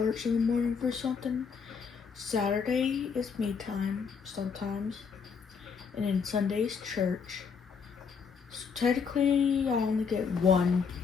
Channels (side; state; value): right; quieter; 6.0 dB